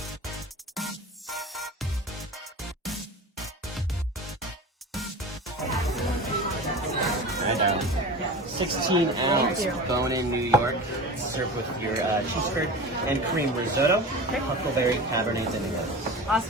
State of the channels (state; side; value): normal; both; correlation 0.33